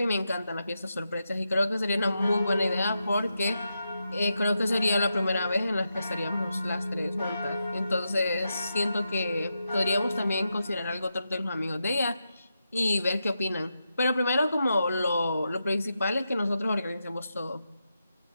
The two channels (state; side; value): inverted; both; correlation -0.87